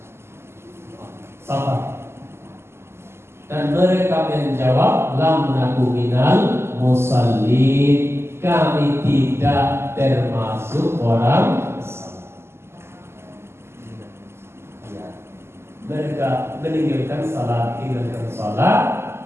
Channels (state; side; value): late; left; 0.12 ms